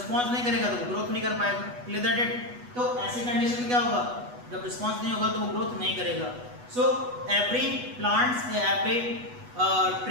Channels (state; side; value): late; left; 8.2 ms